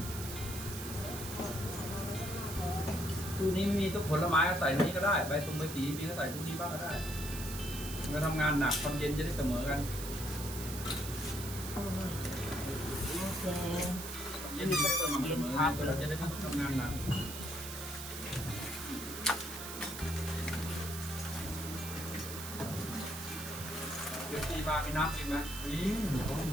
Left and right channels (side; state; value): right; noise; hiss, 8 dB below the sound